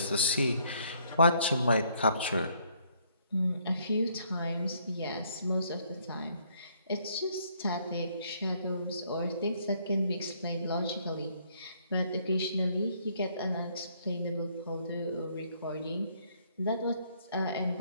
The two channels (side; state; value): both; inverted; correlation -0.67